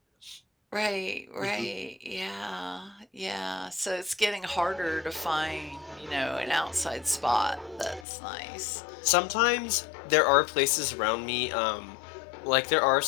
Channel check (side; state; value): right; drops out; at 8.1 s